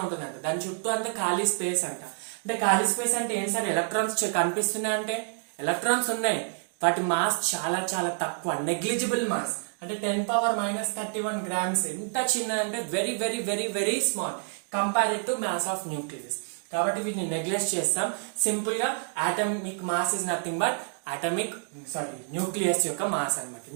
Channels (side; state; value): left; silent; 59 dB below the other